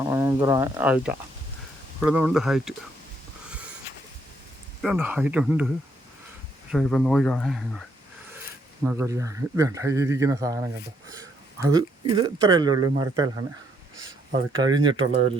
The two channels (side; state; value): both; normal; correlation 0.72